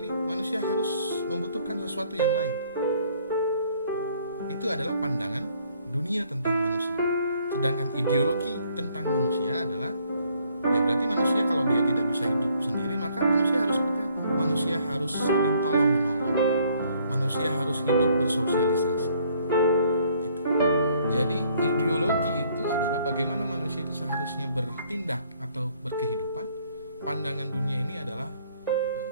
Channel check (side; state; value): both; inverted; correlation -0.64